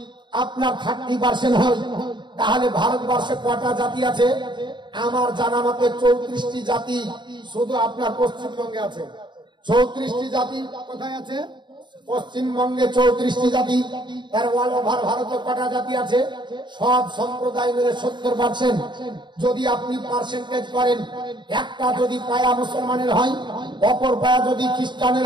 আপনার 30% হয় তাহলে ভারতবর্ষে কটা জাতি আছে? আমার জানা মতে 34টি জাতি শুধু আপনার পশ্চিমবঙ্গে আছে। 34টি জাতি কোথায় আছে? পশ্চিমবঙ্গে 34টি জাতি। তার অল ওভার ভারতে কটা জাতি আছে? সব সম্প্রদায় মিলে 70%। যদি আপনি পার্সেন্টেজ করেন, একটা যদি পায়া মুসলমানের হয়, অপর পায়া যদি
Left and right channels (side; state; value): left; late; 0.22 ms